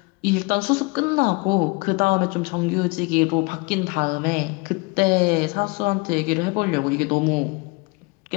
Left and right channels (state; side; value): quieter; right; 27.4 dB